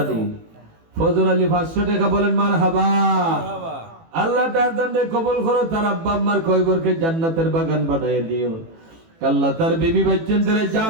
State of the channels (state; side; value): late; left; 18 ms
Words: দি ফজর আলী 500 টাকা বলেন মারহাবা আল্লাহ তার দানে কবুল করো, তার আব্বা আম্মার কয়বরকে জান্নাতের বাগান বানায় দিও। আল্লাহ তার বিবি বাচ্চাদের